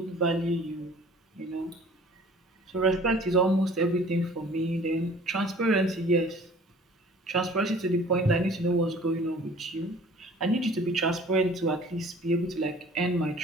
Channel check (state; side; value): normal; both; correlation 0.49